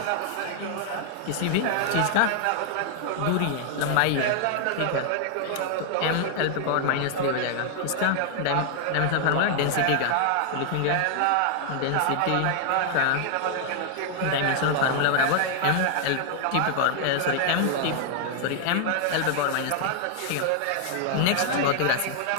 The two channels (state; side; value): different; both; correlation 0.00